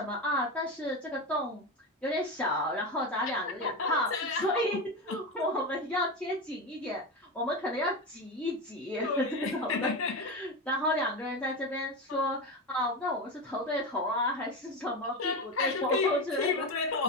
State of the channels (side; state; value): both; normal; correlation 0.19